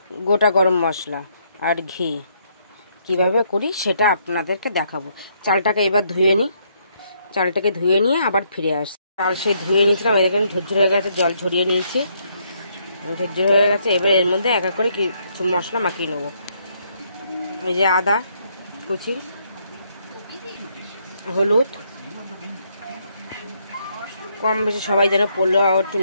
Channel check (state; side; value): inverted; both; correlation -0.72